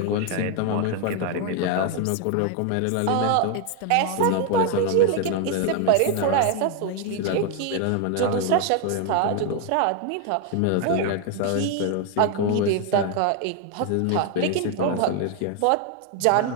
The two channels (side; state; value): both; different; correlation 0.01